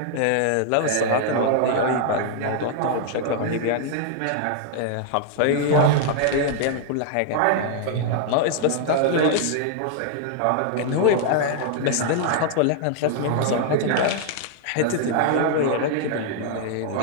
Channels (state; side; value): different; both; correlation -0.01